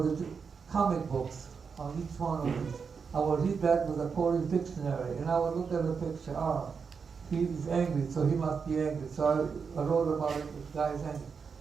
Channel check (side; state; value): left; quieter; 5.8 dB